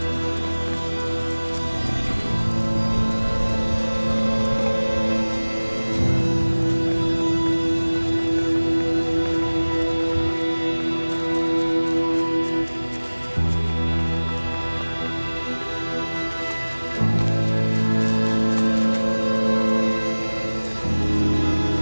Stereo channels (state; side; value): inverted; both; correlation -1.00